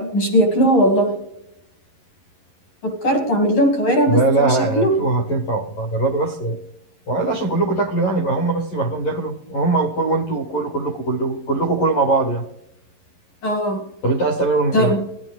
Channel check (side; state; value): right; late; 11 ms